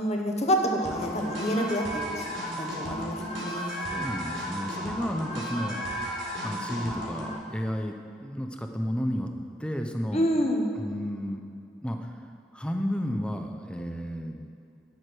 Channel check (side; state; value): both; normal; correlation 0.63